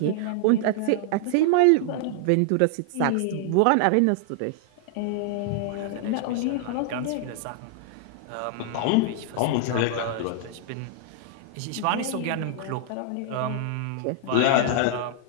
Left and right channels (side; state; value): both; different; correlation 0.00